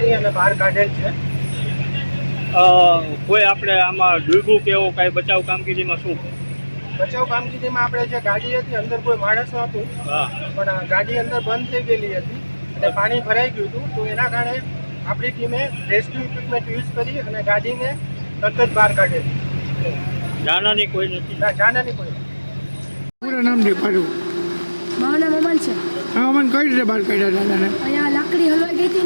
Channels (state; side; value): inverted; both; correlation -1.00